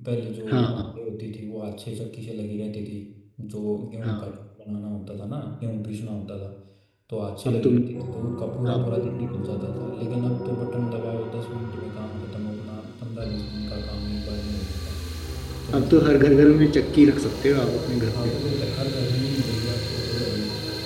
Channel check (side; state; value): both; identical; correlation 1.00